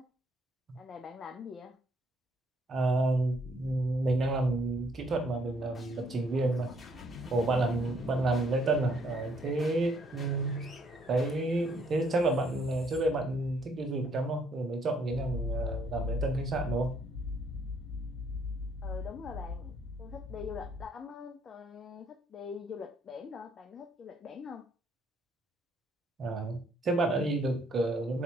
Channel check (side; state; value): both; normal; correlation 0.67